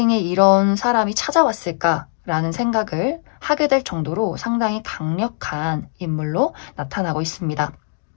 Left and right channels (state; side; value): silent; right; digital silence